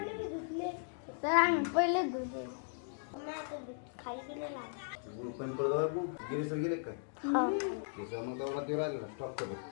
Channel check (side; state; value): right; silent; digital silence